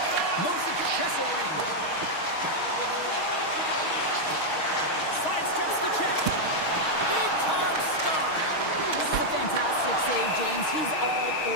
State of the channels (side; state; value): right; late; 6.4 ms